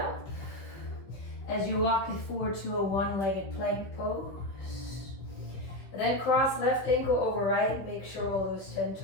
as you walk it forward to a one-legged plank pose. And then cross left ankle over right. Make sure all those 10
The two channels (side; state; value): right; late; 15 ms